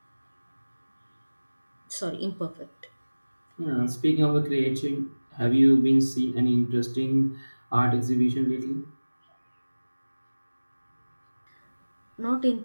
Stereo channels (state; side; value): inverted; both; correlation -1.00